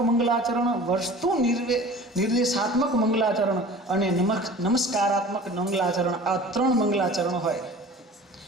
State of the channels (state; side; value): normal; both; correlation 0.42